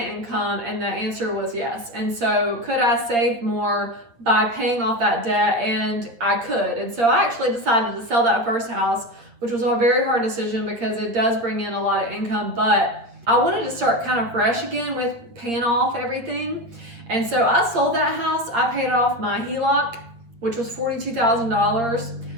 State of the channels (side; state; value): left; late; 8.9 ms